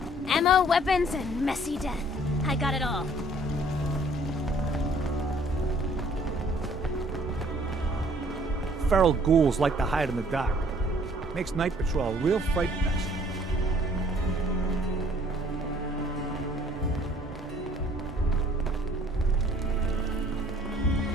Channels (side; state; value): both; normal; correlation 0.58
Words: Ammo, weapons, and messy death. I got it all. Feral ghouls like to hide in the dark. Makes night patrol a real fright fest.